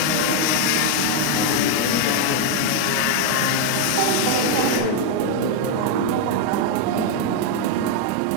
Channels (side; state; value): both; different; correlation 0.00